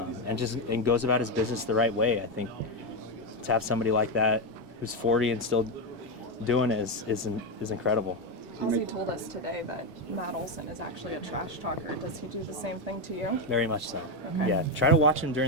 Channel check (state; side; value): normal; both; correlation 0.09